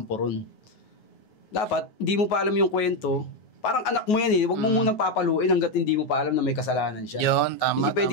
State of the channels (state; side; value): late; right; 9.4 ms